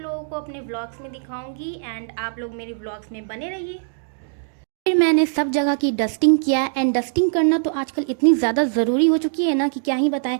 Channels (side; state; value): left; silent; digital silence